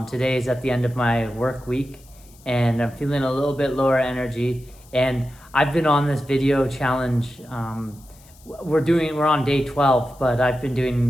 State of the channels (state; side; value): noise; left; hiss, 26 dB below the sound